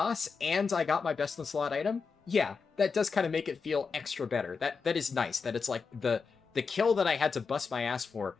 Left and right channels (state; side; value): quieter; right; 5.2 dB